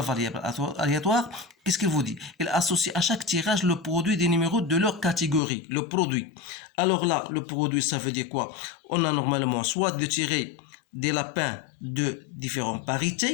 aléatoire, qu'est-ce qu'il vous dit? Elle associe à chaque tirage le produit des numéros de leur catégorie, le produit. Alors là, le produit, ça veut dire quoi? On a normalement soit de tirer des lapins de différentes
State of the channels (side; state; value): right; drops out; at 5.4 s